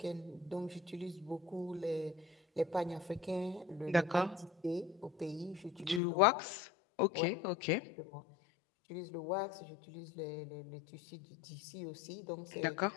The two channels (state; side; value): drops out; right; at 6.0 s